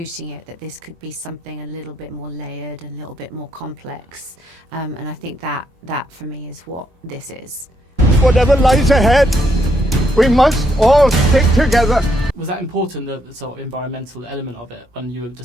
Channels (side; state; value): both; normal; correlation 0.76